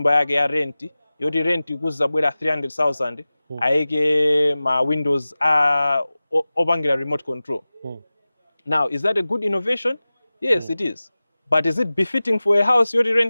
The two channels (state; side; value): inverted; both; correlation -0.97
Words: yake ya rent yoti rent ikuzabwera 300,000 ayike ma windows opangira remote control. Now, is that a good innovation? Yes, it is. But is it befitting for a house yoti